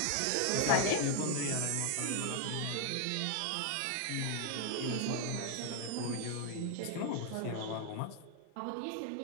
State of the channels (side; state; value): both; different; correlation 0.00